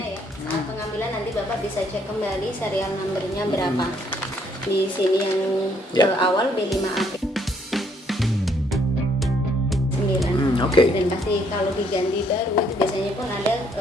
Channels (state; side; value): normal; both; correlation 0.68